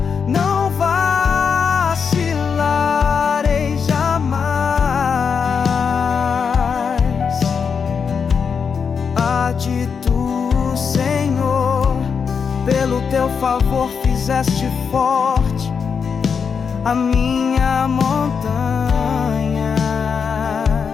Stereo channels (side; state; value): right; quieter; 6.2 dB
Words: não vacilarei jamais. Há de tu favor fizeste forte a minha montanha.